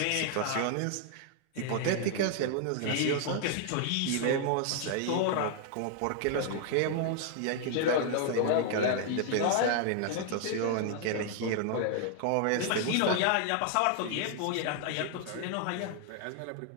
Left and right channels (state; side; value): different; both; correlation 0.00